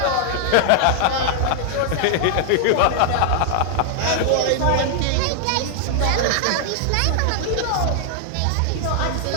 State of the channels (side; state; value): both; different; correlation 0.00